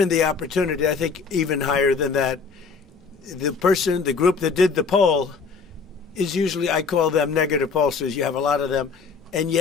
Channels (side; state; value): right; quieter; 5.0 dB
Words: the opportunity, I think even higher than that, the group that did the poll is usually, I call them negative pollsters. You have a lot of them. And